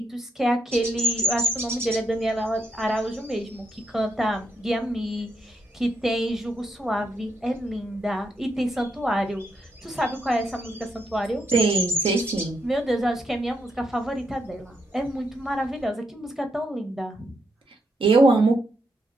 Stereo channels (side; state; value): both; normal; correlation 0.79